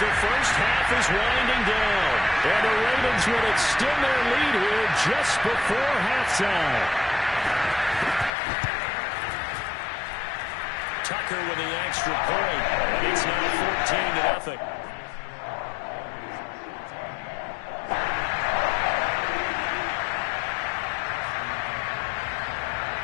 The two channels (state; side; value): drops out; right; at 8.3 s